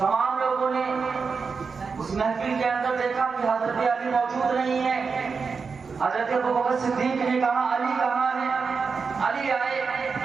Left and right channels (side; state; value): left; quieter; 5.2 dB